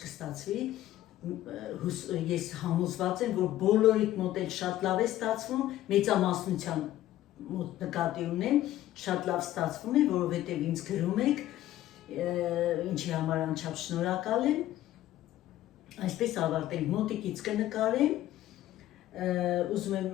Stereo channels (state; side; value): quieter; right; 13.9 dB